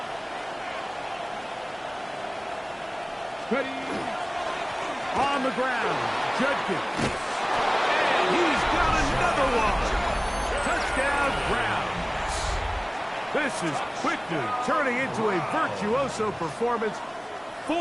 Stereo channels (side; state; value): both; identical; correlation 1.00